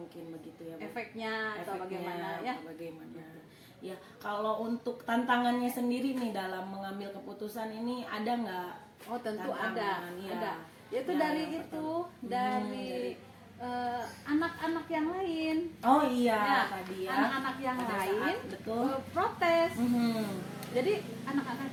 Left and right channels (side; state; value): both; identical; correlation 1.00